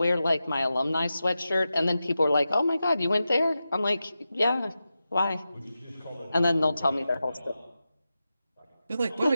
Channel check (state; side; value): inverted; both; correlation -0.92